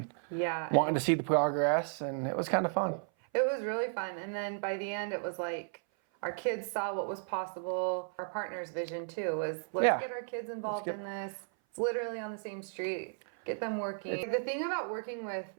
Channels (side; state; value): left; silent; 55 dB below the other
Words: wanting to see the progress, and it was kind of fun. It was really fun. And then by the end, it was like, our kids saw what was possible. Our partner's vision too was, let's get our kids involved in this. It's literally on the same street. Get them working. The thing about working with